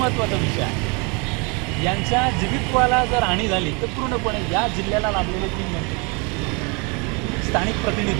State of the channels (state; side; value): quieter; left; 31.1 dB